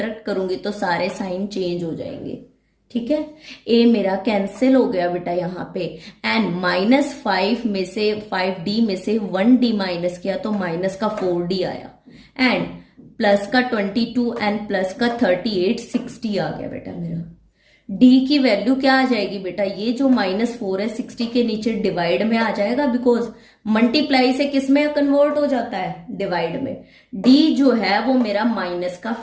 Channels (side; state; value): both; identical; correlation 1.00